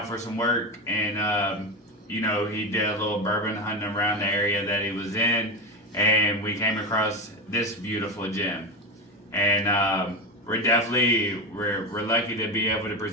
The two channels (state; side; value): normal; both; correlation 0.18